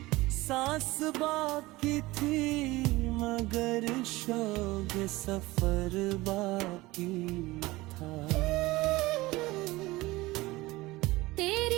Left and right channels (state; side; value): quieter; left; 20.0 dB